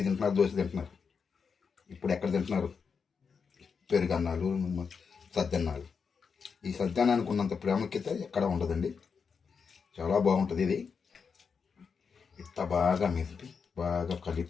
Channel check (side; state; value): right; quieter; 5.8 dB